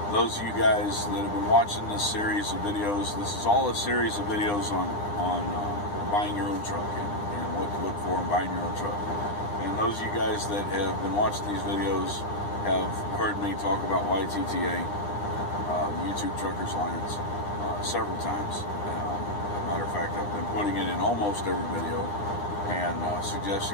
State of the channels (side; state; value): right; late; 9.8 ms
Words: Those of you guys that have been watching this series of videos, this is all a series of videos on buying your own truck and what to look for in buying your own truck. And those of you guys that have been watching these videos have heard me talk about YTTA, the YouTube Truckers Alliance, several times. As a matter of fact, I've been putting it in almost every video and